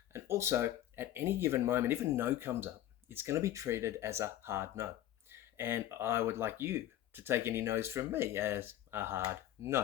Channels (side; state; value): right; quieter; 12.9 dB